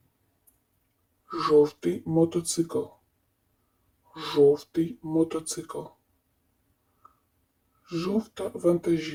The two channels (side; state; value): both; identical; correlation 1.00